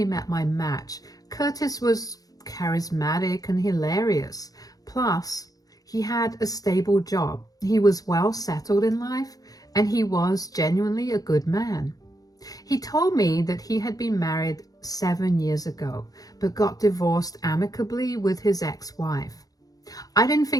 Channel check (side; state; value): right; late; 0.18 ms